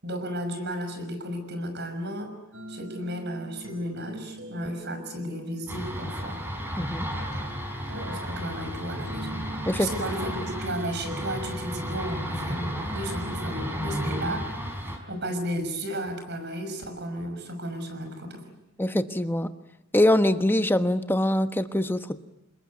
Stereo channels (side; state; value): both; normal; correlation 0.71